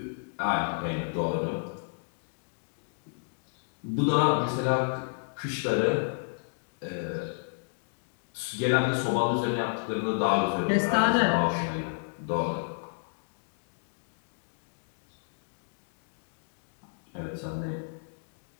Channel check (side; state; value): right; silent; digital silence